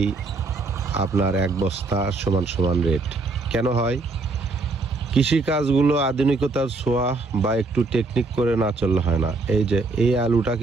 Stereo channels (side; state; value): left; quieter; 3.5 dB